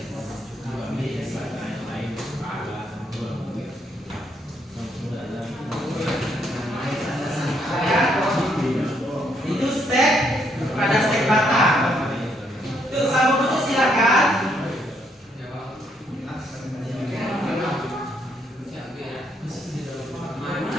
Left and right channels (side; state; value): both; normal; correlation 0.73